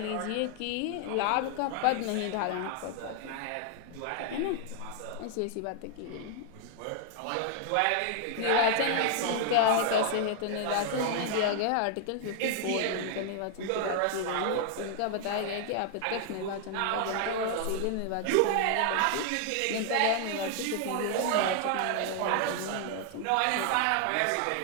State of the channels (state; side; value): different; both; correlation 0.00